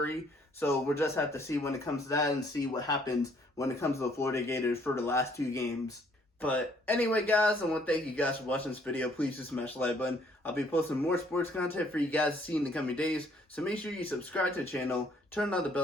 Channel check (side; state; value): both; normal; correlation 0.64